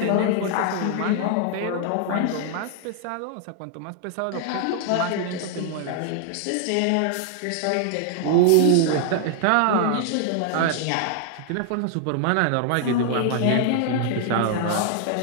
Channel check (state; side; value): different; both; correlation 0.00